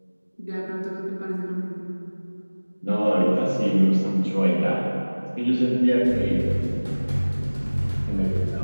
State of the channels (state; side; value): inverted; both; correlation -1.00